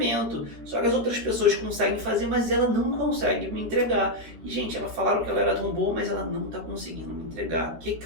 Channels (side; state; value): left; late; 13 ms